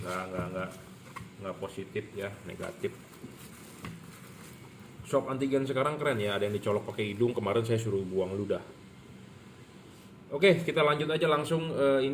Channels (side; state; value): both; identical; correlation 1.00